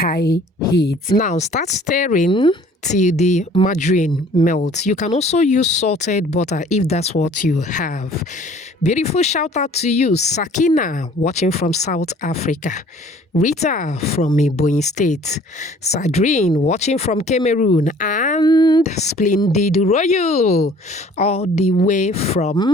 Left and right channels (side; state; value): both; normal; correlation 0.53